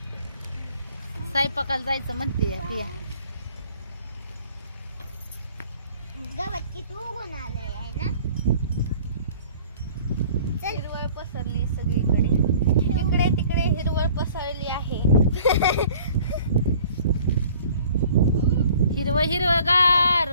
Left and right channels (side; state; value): both; inverted; correlation -0.51